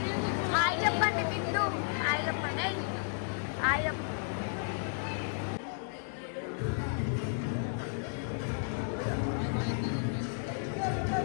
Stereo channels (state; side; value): silent; right; 56 dB below the other